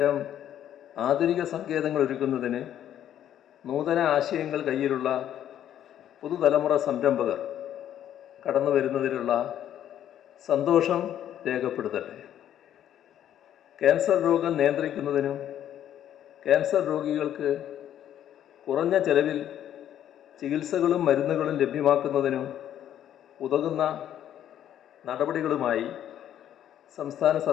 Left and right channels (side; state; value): right; quieter; 10.8 dB